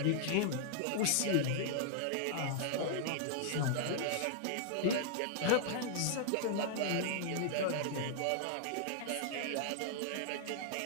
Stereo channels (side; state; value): both; different; correlation -0.01